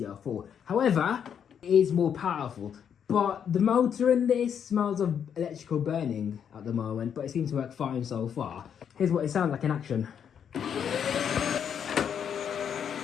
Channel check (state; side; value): quieter; right; 8.1 dB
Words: However, it is more powerful. But the motor in this smells of electrical burning at the moment, but it seems to work fine so far. Here's what it sounds like in action.